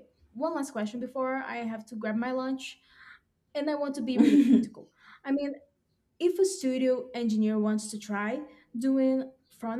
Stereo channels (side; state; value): both; identical; correlation 1.00